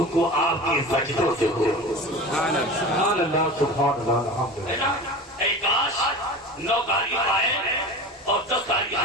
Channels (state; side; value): normal; both; correlation 0.33